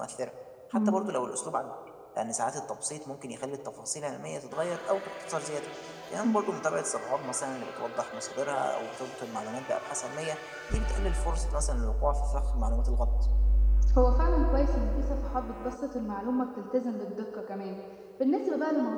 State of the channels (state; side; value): identical; both; correlation 1.00